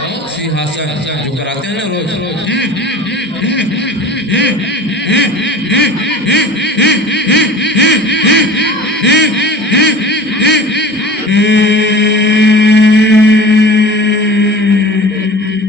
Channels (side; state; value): both; normal; correlation 0.39